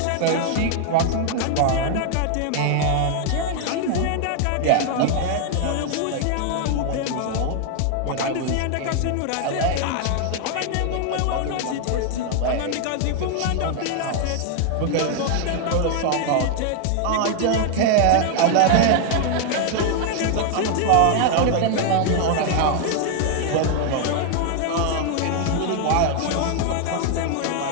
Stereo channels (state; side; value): different; both; correlation 0.00